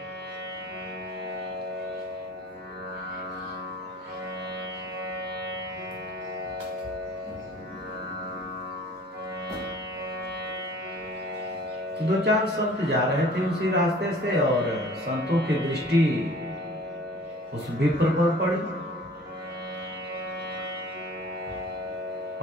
दो चार संत जा रहे थे उसी रास्ते से, और संतों की दृष्टि उस विप्र पर पड़ी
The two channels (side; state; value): both; normal; correlation 0.48